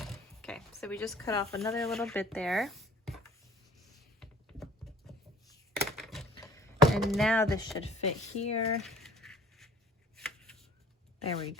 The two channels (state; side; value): normal; both; correlation 0.49